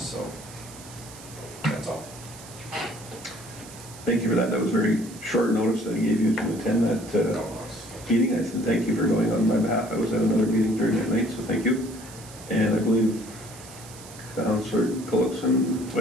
so that's all. Thank you for that. That was very short notice that I gave you to attend that meeting. I said thank you for going on my behalf. I was at another meeting during that night, so thank you. And I believe Councillor Gullickson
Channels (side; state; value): right; noise; hiss, 17 dB below the sound